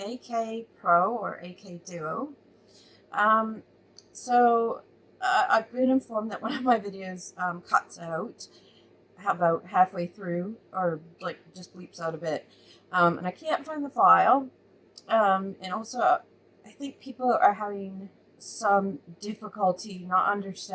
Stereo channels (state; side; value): identical; both; correlation 1.00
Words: AK Pro or AK Duo. Um, I've been informed that one of my videos cuts out about halfway through, or like just bleeps out a bit, and I can't find the file. And also, I think people are having some difficulty not